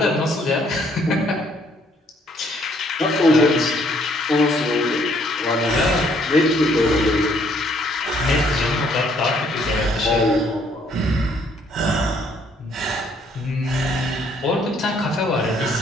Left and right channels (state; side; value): normal; both; correlation 0.65